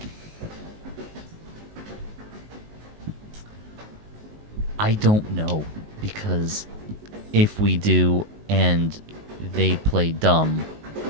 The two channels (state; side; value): late; left; 19 ms